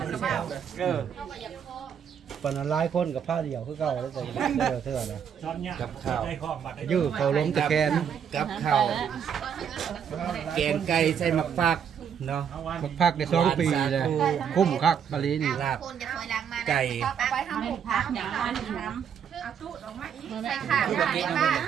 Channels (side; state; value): left; quieter; 7.9 dB